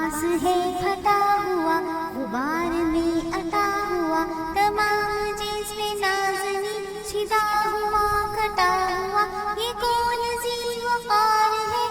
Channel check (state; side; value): identical; both; correlation 1.00